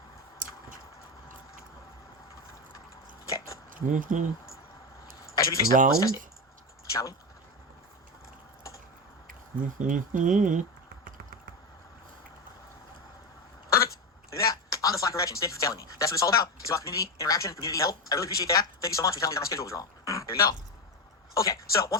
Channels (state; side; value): normal; both; correlation 0.16